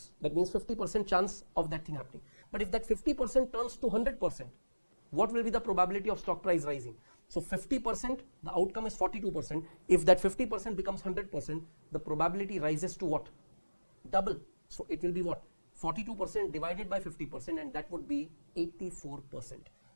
That means 50% chance of that thing happening. But if that 50% turns to 100%, what will be the probability of stock price rising? So 50%, the outcome is 42%. If that 50% becomes 100%, the probability rises to what? Double. So it will be what? 42% divided by 50%, and that would be 84%.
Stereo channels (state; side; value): inverted; both; correlation -1.00